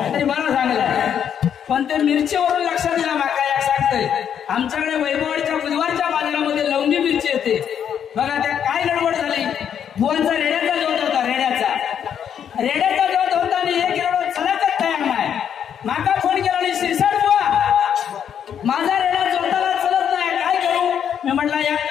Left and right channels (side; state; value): right; quieter; 8.6 dB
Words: तरी बरा सांगला. पण ते मिरचीवरून लक्षात दिला माका या सांगतोय आमच्याकडे वैभववाडीच्या बुधवारच्या बाजारामध्ये लवंगी मिरची येते बघा. त्या काय गडबड झाली बुवांचा रेड्याचा जोत होता. रेड्याचा जोत होता आणि एक रेडो चलतच तयार नाही. माका फोन केला आणि शिरसाट बुवा माझा रेडा जोताला चलत नाही काय करू. मी म्हटलं एक